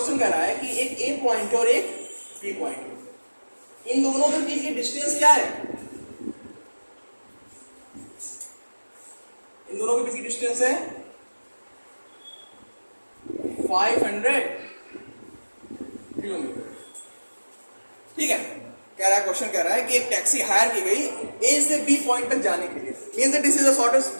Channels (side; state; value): both; inverted; correlation -1.00